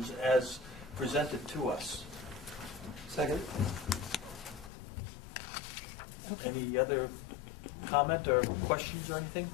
as presented to us. Second. Any other comment or questions or anything?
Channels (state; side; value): drops out; right; at 4.7 s